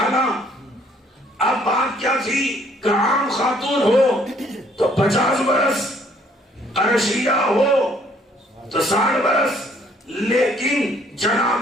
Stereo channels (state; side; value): normal; both; correlation 0.63